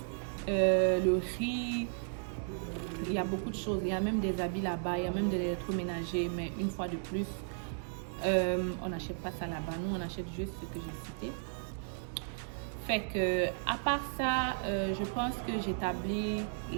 Le riz, il y a beaucoup de choses, il y a même des habits là-bas, il y a même de l'électroménager, mais une fois de plus, on n'achète pas ça là-bas, nous on achète juste ce que j'ai cité. Fait que, à part ça, je pense que j'établis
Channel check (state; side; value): silent; left; digital silence